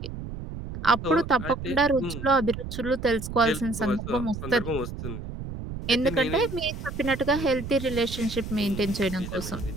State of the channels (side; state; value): right; noise; rumble, 8 dB below the sound